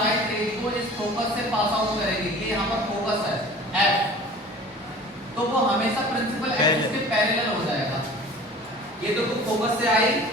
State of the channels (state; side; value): normal; both; correlation 0.43